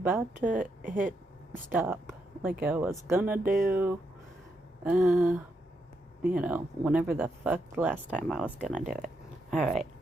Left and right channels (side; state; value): both; normal; correlation 0.81